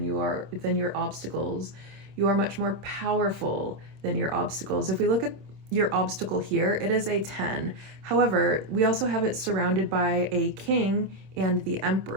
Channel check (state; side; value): late; left; 26 ms